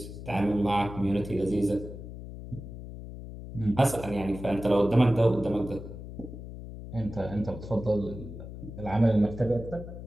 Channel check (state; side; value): noise; left; hum, 11 dB below the sound